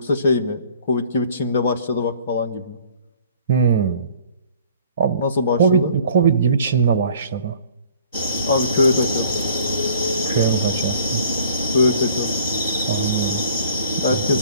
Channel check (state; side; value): inverted; both; correlation -0.53